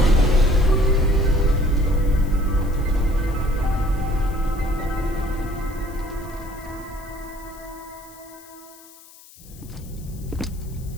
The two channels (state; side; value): noise; left; hiss, 22 dB below the sound